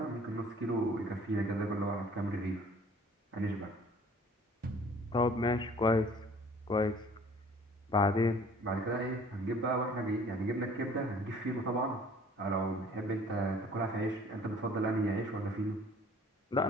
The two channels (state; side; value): normal; both; correlation 0.52